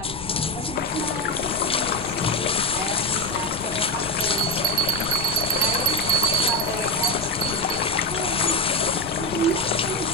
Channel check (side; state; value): left; noise; rumble, 12 dB below the sound